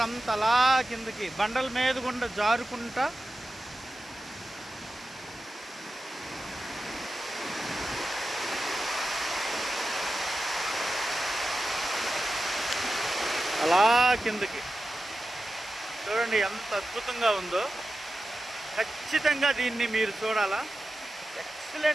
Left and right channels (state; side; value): normal; both; correlation 0.93